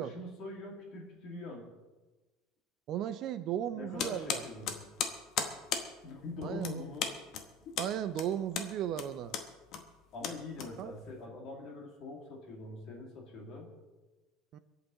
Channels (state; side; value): normal; both; correlation 0.36